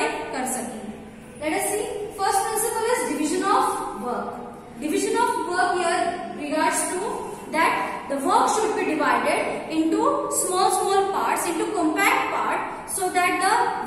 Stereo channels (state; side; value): identical; both; correlation 1.00